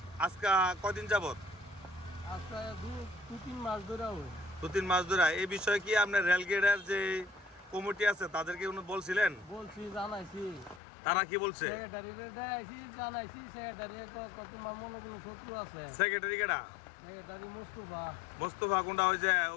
আজকে কদিন যাবত? আজকে দু তিন মাস ধরে হয়। 2-3 মাস ধরে। এই বিষয়ে কি আপনার রেলগেটের যে কমিটি আছে তাদেরকে উনি বলছিলেন? বলছি, জানাইছি। তারা কি বলছে? সেক্রেটারিকে দেখাইছি, জানাইছি। সেক্রেটারি তোমার মনে কোনো শত্রু আছে? সেক্রেটারি কেডা? সেক্রেটারি মুস্তফা। মোস্তফা কোনটা? ওই যে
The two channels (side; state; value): right; drops out; at 10.8 s